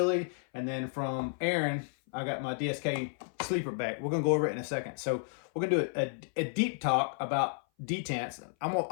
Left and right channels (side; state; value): right; silent; 56 dB below the other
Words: And then from Aaron, I got my DSK sleeper back. We're gonna go over it in a second. So we're gonna do a deep talk about detents. I'm